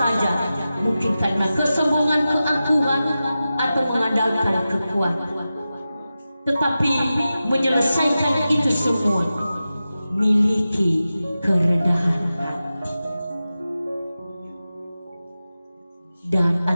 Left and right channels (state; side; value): inverted; both; correlation -0.93